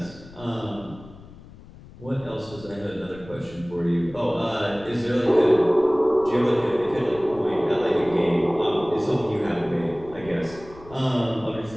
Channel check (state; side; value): noise; left; rumble, 19 dB below the sound